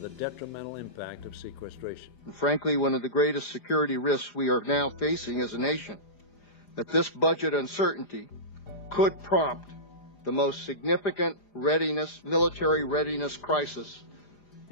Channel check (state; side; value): late; right; 4.9 ms